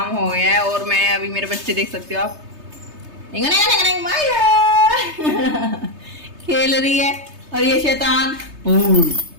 हो गया है। और मैं अभी मेरे बच्चे देख सकते हो आप खेल रही है। और ये शैतान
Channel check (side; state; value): left; late; 3.3 ms